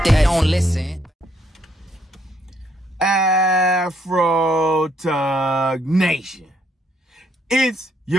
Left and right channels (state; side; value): normal; both; correlation 0.71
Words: they don't listen. Afro Tug Nation. It's